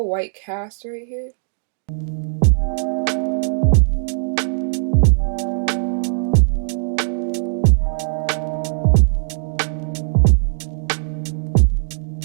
white cast right here.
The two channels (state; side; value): silent; left; 66 dB below the other